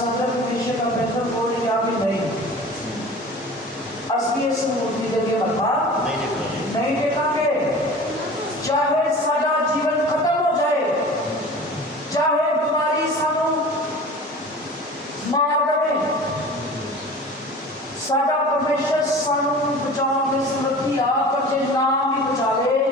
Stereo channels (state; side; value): normal; both; correlation 0.39